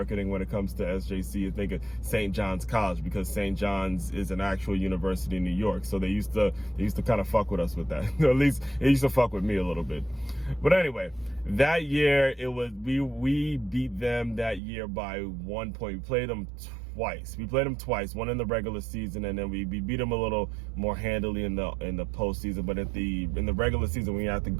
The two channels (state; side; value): drops out; left; at 14.6 s